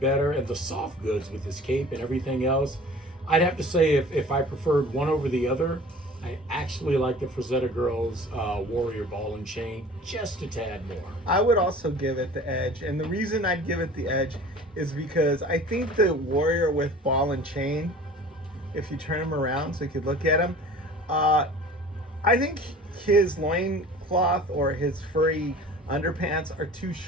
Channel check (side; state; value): both; normal; correlation 0.44